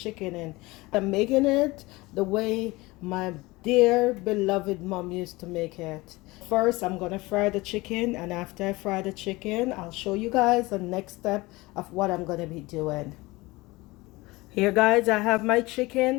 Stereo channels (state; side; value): quieter; right; 21.7 dB